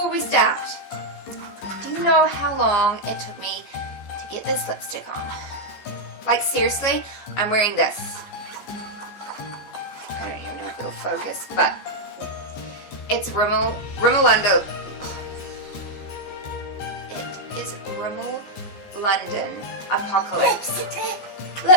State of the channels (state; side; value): late; right; 15 ms